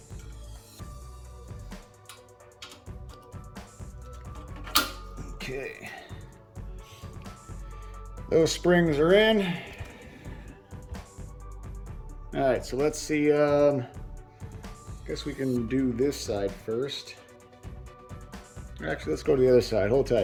Okay. Those springs are in. All right, so let's see. Guess we can do this side first. Actually, let's go to the other side. Hold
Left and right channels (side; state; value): both; identical; correlation 1.00